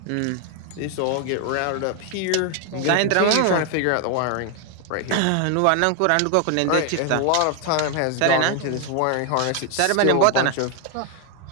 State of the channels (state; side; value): different; both; correlation 0.00